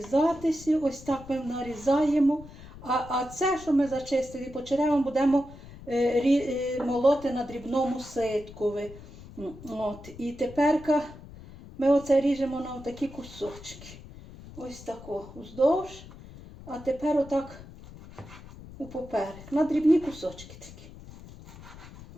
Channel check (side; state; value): left; noise; rumble, 17 dB below the sound